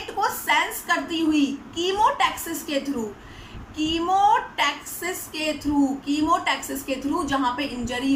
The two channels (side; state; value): both; identical; correlation 1.00